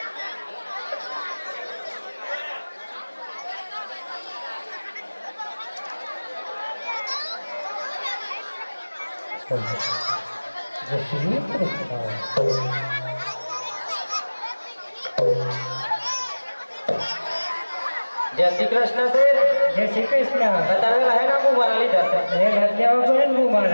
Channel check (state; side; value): inverted; both; correlation -1.00